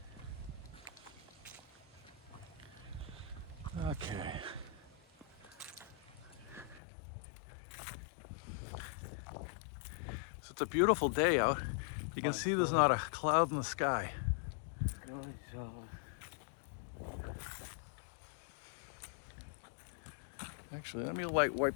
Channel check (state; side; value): drops out; right; at 6.8 s